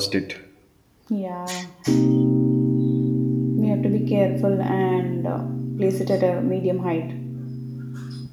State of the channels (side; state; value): both; identical; correlation 1.00